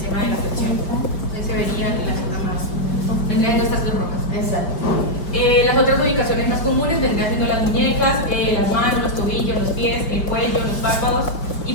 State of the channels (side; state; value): right; late; 5.2 ms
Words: de la flexión. Entonces se verían las zonas más, vendrían siendo estas dos rojas. Exacto. Las otras ubicaciones más comunes vendrían siendo las muñecas, las manos, los tobillos, los pies, el cuello, los párpados y